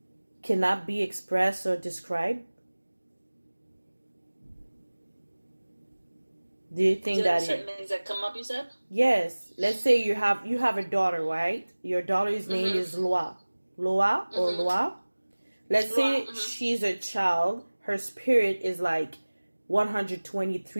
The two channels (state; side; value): inverted; both; correlation -1.00